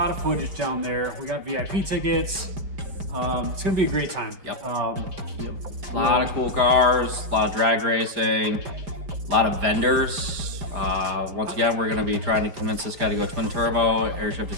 of footage down there. We got VIP tickets. It's gonna be a great time. Yep. A lot of cool cars, a lot of drag racing, a lot of vendors. Once again, we're gonna be trying to convince this guy to go twin turbo, air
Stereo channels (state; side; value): late; left; 4.9 ms